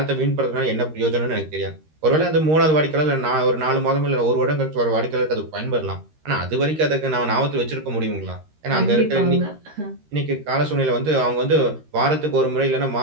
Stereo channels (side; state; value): left; late; 13 ms